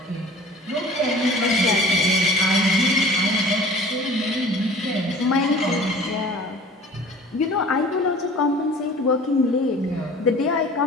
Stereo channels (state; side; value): normal; both; correlation 0.45